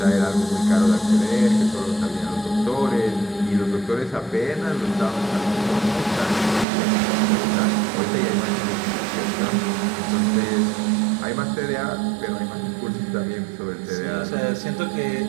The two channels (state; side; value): drops out; left; at 6.7 s